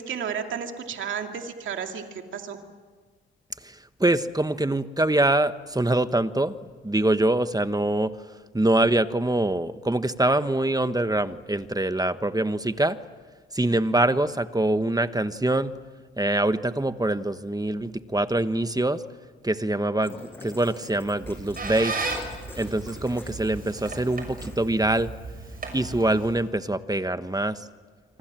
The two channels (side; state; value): both; normal; correlation 0.68